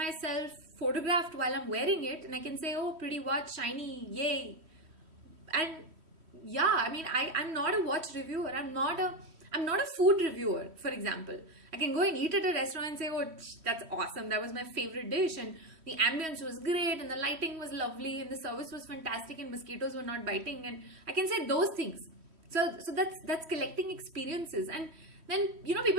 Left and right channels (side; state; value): left; late; 3.1 ms